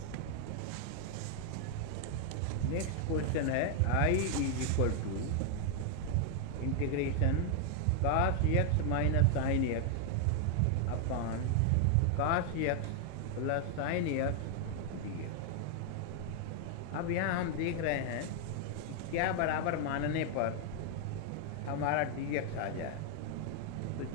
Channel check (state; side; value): different; both; correlation 0.00